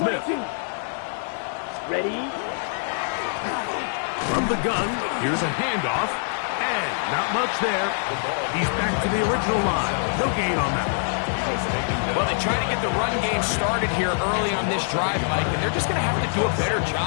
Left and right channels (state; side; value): silent; right; digital silence